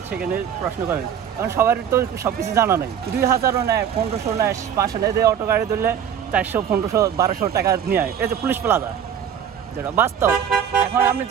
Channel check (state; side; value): quieter; left; 8.6 dB